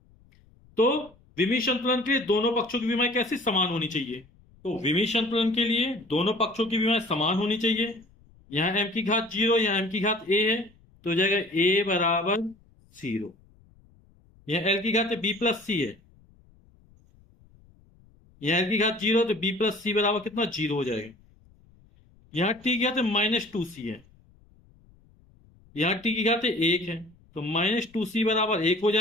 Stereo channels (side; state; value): left; noise; rumble, 29 dB below the sound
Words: तो विमी संतुलन के लिए दोनों पक्षों की विमाएं कैसे? समान होनी चाहिए। तो विमी संतुलन के लिए दोनों पक्षों की विमाएं समान होनी चाहिए। यहाँ m की घात 0, यहाँ m की घात a है, तो हो जाएगा a बराबर 0। यहाँ l की घात b प्लस सी है, यहाँ l की घात 0 तो b प्लस सी बराबर कितना? 0 हो जाएगा। यहाँ t की घात -2c है, यहाँ t की घात 1 है, तो -2c बराबर 1 हो